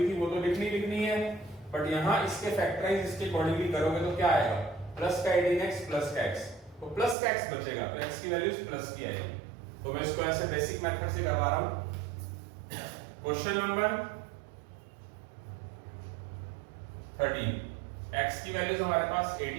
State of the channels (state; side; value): drops out; left; at 7.2 s